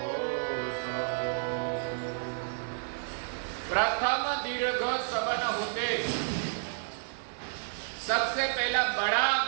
प्रथम दीर्घ सबन होते। सबसे पहला बड़ा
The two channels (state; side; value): silent; left; 57 dB below the other